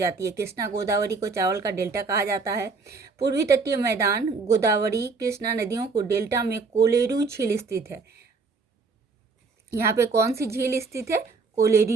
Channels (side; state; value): left; quieter; 4.4 dB